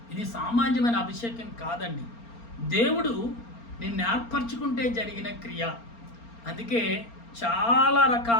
ఇది సామాన్యమైన అభిషేకం కాదండి, దేవుడు నిన్ను ఏర్పరచుకుంటే జరిగిన క్రియ. అందుకే చాలా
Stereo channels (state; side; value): late; right; 4.3 ms